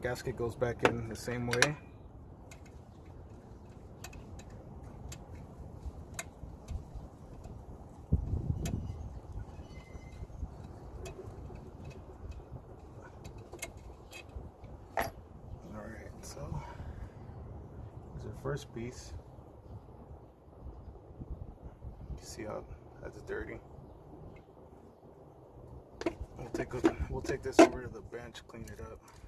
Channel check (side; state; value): both; identical; correlation 1.00